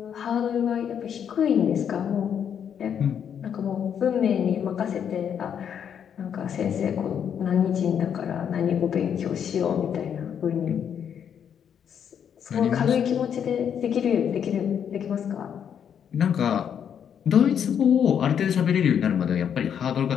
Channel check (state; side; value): quieter; right; 8.3 dB